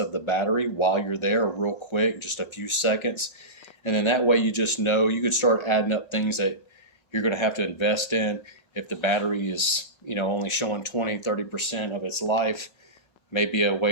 the battery while you're there real quick, just a few seconds. And then that way you just know, you could start adding up things that you're going to have to invest in. If the battery is, you know, only showing 20-30% of its life, maybe a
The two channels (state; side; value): late; right; 5.5 ms